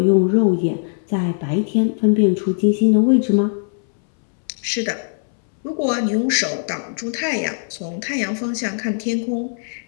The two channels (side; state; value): right; silent; 65 dB below the other